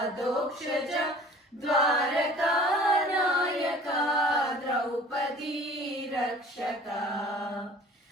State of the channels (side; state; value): both; normal; correlation 0.47